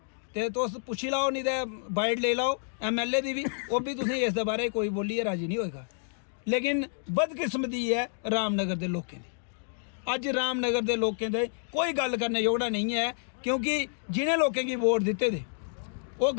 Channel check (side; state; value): right; silent; digital silence